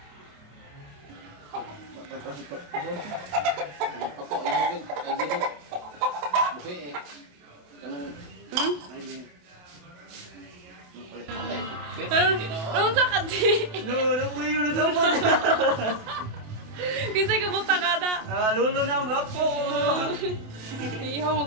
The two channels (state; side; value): late; left; 28 ms